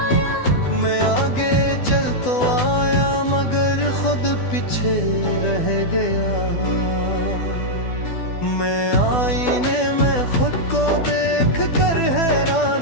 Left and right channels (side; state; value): right; late; 12 ms